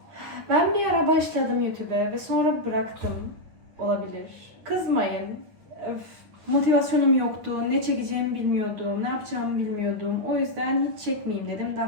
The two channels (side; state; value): left; late; 9.4 ms